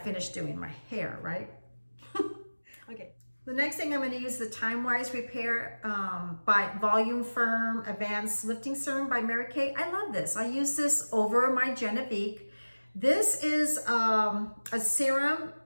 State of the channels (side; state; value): both; inverted; correlation -1.00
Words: doing my hair, right? Okay. The next thing I'm gonna use the Time Wise Repair by Volume Firm Advanced Lifting Serum by Mary Kay. I love this. I use this over my Genevieve. This is a serum